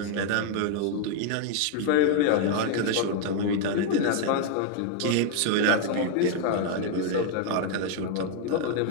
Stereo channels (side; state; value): both; different; correlation 0.00